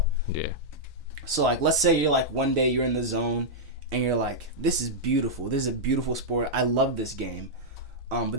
Yeah. So like let's say you're like one day you're in the zone and you're like, this is beautiful. This is a beautiful sport. I love this game. But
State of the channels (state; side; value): normal; both; correlation -0.08